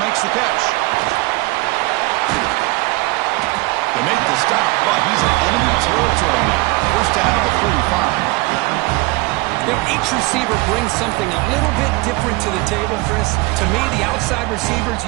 the catch. They make the stop, but he's in enemy territory now. 1st down at the 45. You know, each receiver brings something a little bit different to the table, Chris. To me, the outside receivers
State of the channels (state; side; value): quieter; left; 23.6 dB